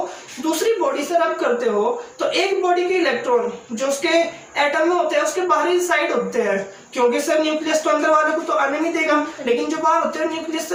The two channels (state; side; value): identical; both; correlation 1.00